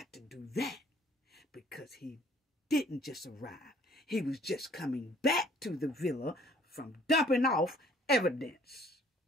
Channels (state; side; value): normal; both; correlation 0.57